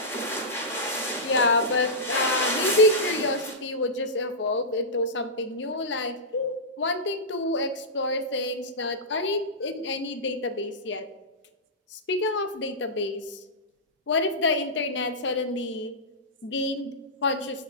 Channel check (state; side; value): normal; both; correlation -0.14